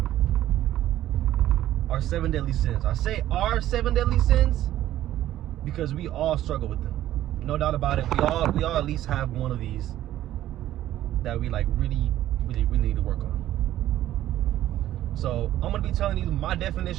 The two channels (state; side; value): quieter; left; 13.3 dB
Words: our 7 deadly sins. I say our 7 deadly sins because we all struggle with them. No doubt about it. We all at least have one of these that we like really need to work on. So I'm gonna be telling you my